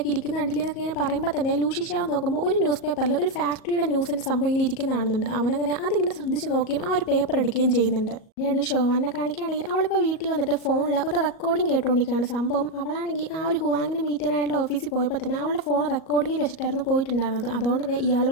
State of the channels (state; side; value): late; right; 38 ms